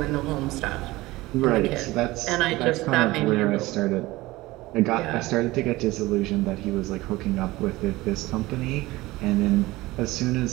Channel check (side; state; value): left; quieter; 19.4 dB